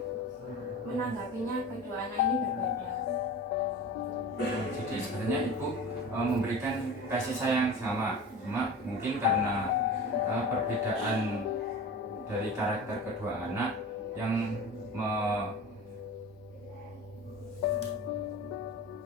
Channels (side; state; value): both; normal; correlation 0.34